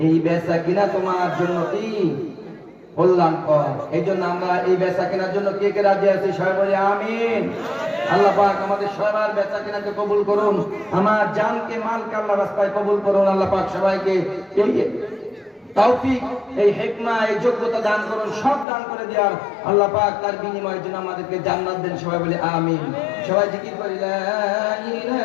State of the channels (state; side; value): drops out; right; at 18.7 s